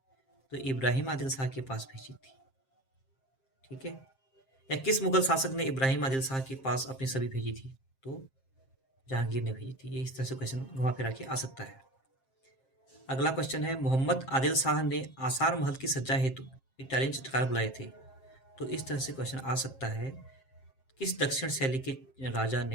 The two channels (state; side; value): late; right; 7.5 ms